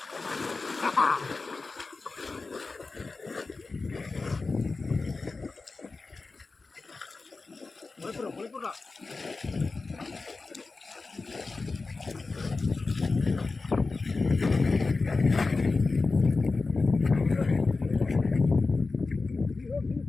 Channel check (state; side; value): quieter; right; 3.9 dB